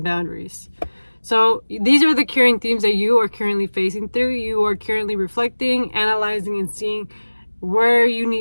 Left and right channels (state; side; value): inverted; both; correlation -1.00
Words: boundaries. So these are the current themes that you are currently facing through. You are currently reflecting, analyzing, and seeing where you